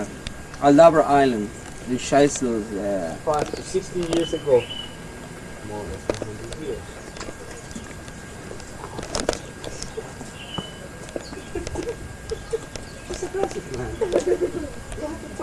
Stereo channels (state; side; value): identical; both; correlation 1.00